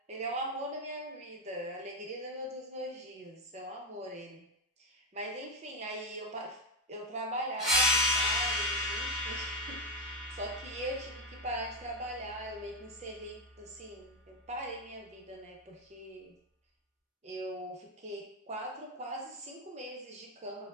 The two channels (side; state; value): both; normal; correlation 0.10